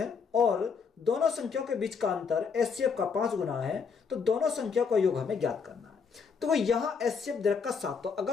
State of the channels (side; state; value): right; quieter; 5.7 dB